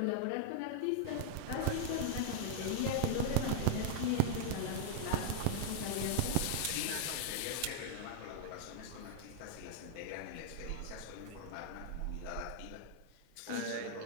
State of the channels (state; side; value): different; both; correlation 0.00